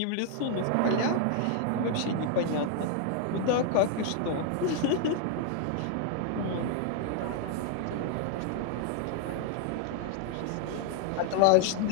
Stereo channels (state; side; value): different; both; correlation 0.00